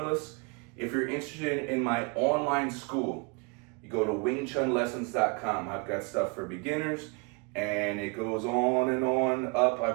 If you're interested in my online school, you go to wingchunlessons.com. I've got stuff for beginners and it goes on and on up.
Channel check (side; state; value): left; quieter; 31.8 dB